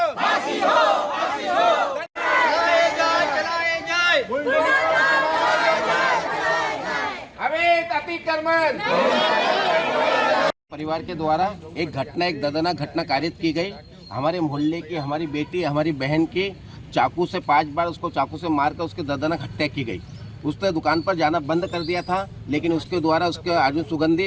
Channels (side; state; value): both; identical; correlation 1.00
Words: फांसी हो, फांसी हो। चलाए जाए अवैध अतिक्रमण। परिवार के द्वारा एक घटना, एक दर्दनाक घटना कारित की गई। हमारे मोहल्ले की हमारी बेटी, हमारी बहन की चाकू से 5 बार उसको चाकू से मारकर उसकी दर्दनाक हत्या की गई। उसने दुकान पर जाना बंद कर दिया था, लेकिन उसके द्वारा उसके अर्जुन